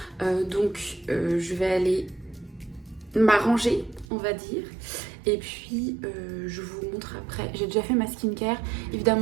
Je vais aller m'arranger, on va dire. Et puis je vous montre après. J'ai déjà fait ma skincare.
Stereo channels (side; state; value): left; drops out; at 4.0 s